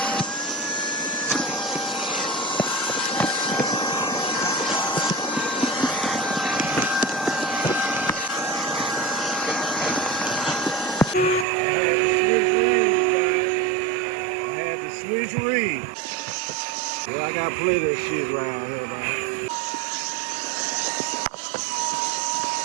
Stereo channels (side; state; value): left; drops out; at 11.5 s